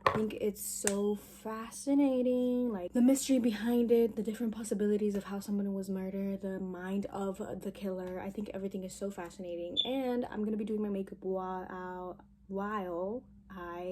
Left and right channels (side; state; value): both; identical; correlation 1.00